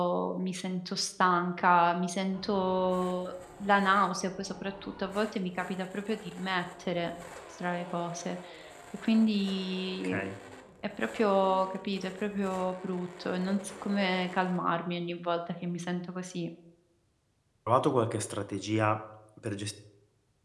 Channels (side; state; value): both; identical; correlation 1.00